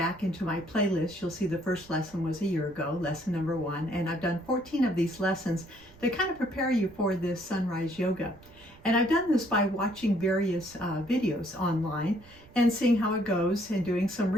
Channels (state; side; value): noise; right; rumble, 24 dB below the sound